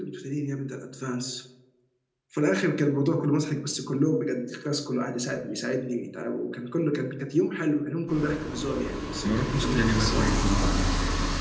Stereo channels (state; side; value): identical; both; correlation 1.00